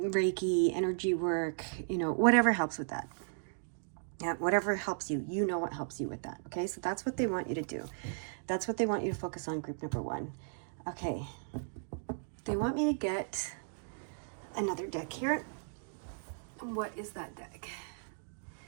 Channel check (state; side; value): silent; left; digital silence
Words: energy work, whatever helps with that. Yeah, whatever helps you, what helps you with that, okay? So that's what they want you to do. That's what they want you to focus on, group number one. Okay, they want me to get another deck here. What is that deck?